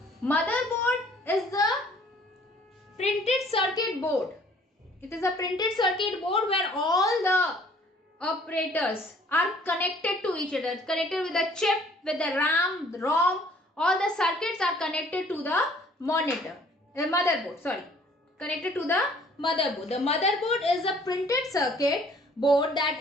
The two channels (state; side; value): normal; both; correlation 0.57